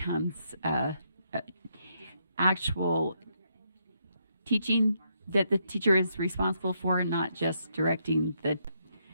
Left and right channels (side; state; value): both; inverted; correlation -0.77